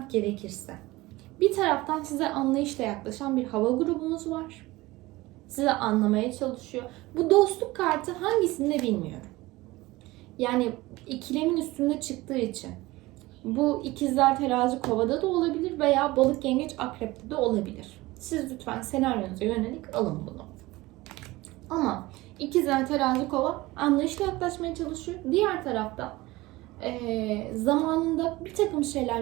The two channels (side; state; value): left; quieter; 19.9 dB